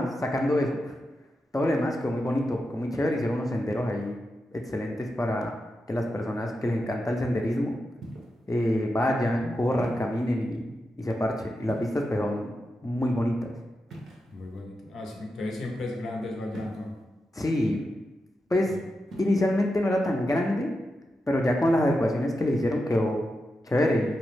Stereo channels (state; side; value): normal; both; correlation 0.89